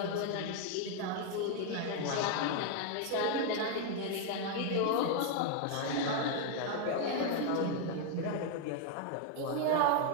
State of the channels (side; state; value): both; different; correlation 0.01